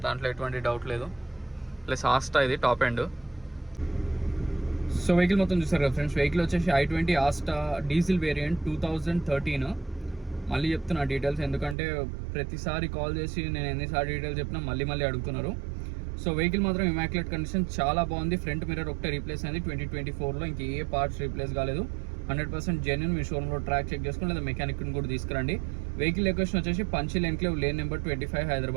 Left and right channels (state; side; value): drops out; left; at 11.8 s